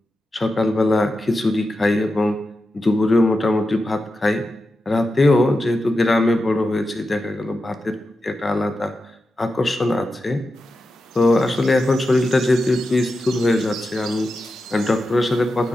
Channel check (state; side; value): normal; both; correlation 0.90